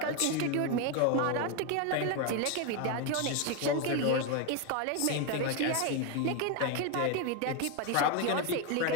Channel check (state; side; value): different; both; correlation 0.02